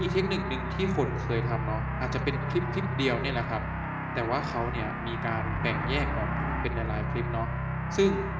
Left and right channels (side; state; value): both; identical; correlation 1.00